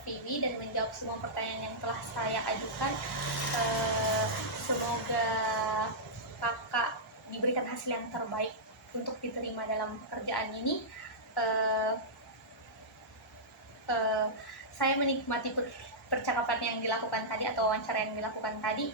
dan menjawab semua pertanyaan yang telah saya ajukan. Semoga kakak diberikan hasil yang terbaik untuk diterima dalam pekerjaan ini. Eh, eh, saya menikmati percakapan yang dilakukan tadi atau wawancara yang dilakukan tadi.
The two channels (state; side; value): normal; both; correlation -0.13